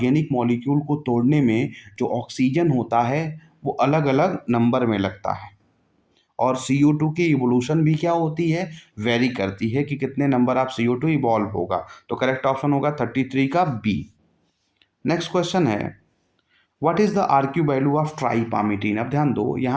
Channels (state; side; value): identical; both; correlation 1.00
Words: मॉलिक्यूल को तोड़ने में जो ऑक्सीजन होता है वो अलग अलग नंबर में लगता है, और CO2 की इवोल्यूशन भी क्या होती है, वेरी करती है कि कितने नंबर ऑफ CO2 इवॉल्व होगा। तो करेक्ट ऑप्शन होगा 33 का बी। नेक्स्ट क्वेश्चन है, what is the RQ value of tripalmitin? अब ध्यान दो,